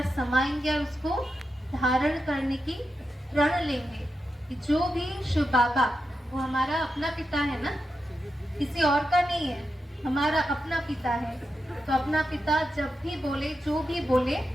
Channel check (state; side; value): normal; both; correlation 0.88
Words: समाएंगे और उसको धारण करने की प्रण लेंगे कि जो भी शिव बाबा, वो हमारा अपना पिता है ना, किसी और का नहीं है, हमारा अपना पिता है। तो अपना पिता जब भी बोले, जो भी बोले,